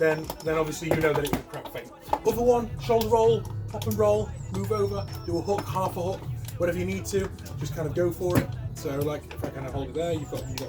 obviously you know that it was a crap feint. Other one, shoulder roll, pop and roll, move over, do a hook, half a hook, whatever you need to. Just kind of go for it. So like if I kind of hold it there, you've got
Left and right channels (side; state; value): both; identical; correlation 1.00